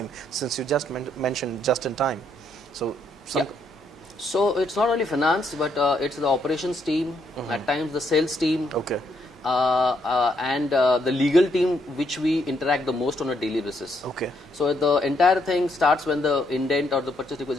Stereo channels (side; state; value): both; normal; correlation 0.74